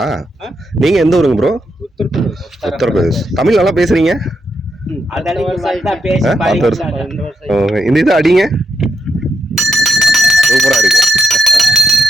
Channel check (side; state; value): both; normal; correlation 0.81